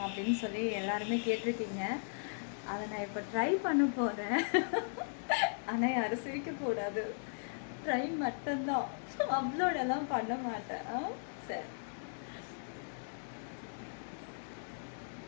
அப்படின்னு சொல்லி எல்லாருமே கேட்டிருக்கீங்க. அதை நான் இப்போ ட்ரை பண்ண போகிறேன். ஆனால் யாரும் சிரிக்கக்கூடாது, ட்ரை மட்டும்தான், அப்லோடெல்லாம் பண்ண மாட்டேன். சரி,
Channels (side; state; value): right; silent; digital silence